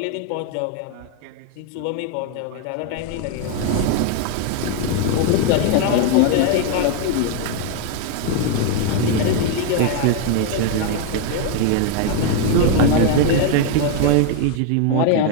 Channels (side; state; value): both; different; correlation 0.01